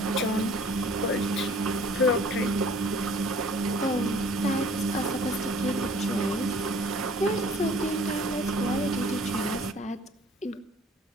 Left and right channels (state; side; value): normal; both; correlation 0.52